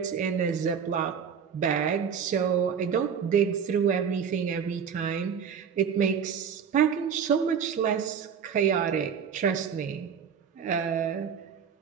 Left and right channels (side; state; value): left; quieter; 7.2 dB